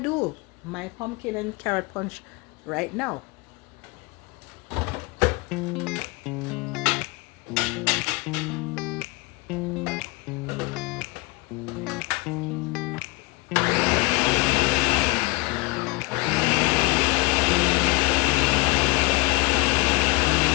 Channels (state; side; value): quieter; right; 26.0 dB